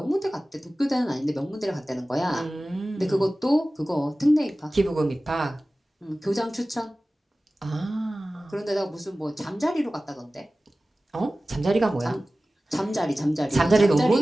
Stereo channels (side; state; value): both; normal; correlation 0.97